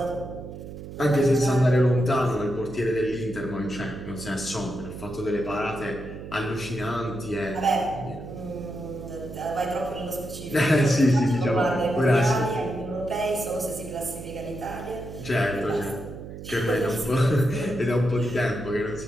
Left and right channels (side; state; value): right; noise; hum, 11 dB below the sound